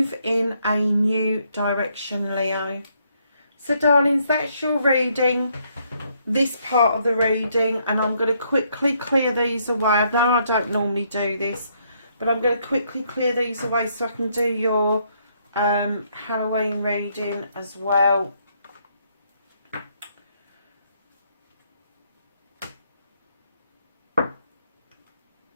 in a new direction, Leo. So darlings, that's your reading, this part of the reading, and I'm going to quickly clear these away. I know I don't normally do this, but I'm going to quickly clear these away so I can do your Halloween reading as well.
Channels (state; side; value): inverted; both; correlation -0.72